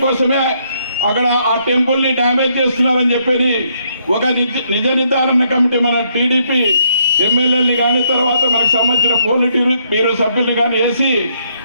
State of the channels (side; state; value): both; inverted; correlation -0.72